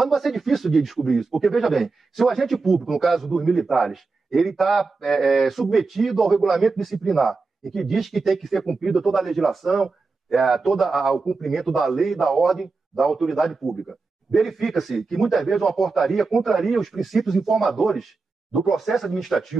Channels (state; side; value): quieter; left; 4.0 dB